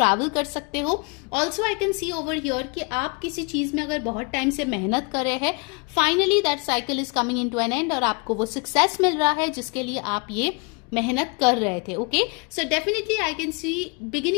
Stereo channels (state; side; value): quieter; right; 31.7 dB